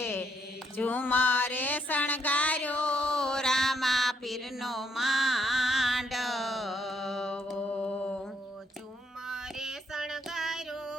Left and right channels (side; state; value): both; normal; correlation 0.71